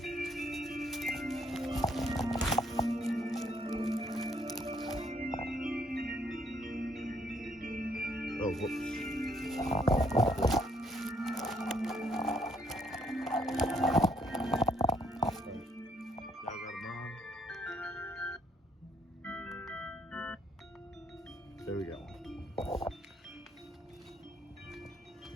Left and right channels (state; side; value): normal; both; correlation 0.68